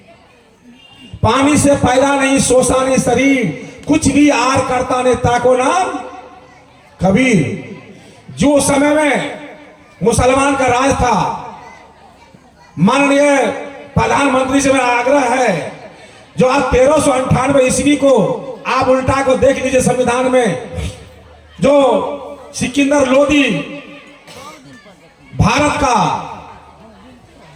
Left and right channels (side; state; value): both; identical; correlation 1.00